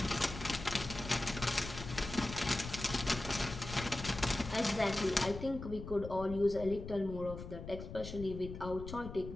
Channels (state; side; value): noise; left; rumble, 9 dB below the sound